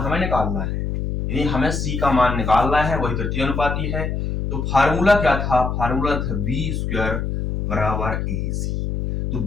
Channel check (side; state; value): left; noise; hum, 2 dB below the sound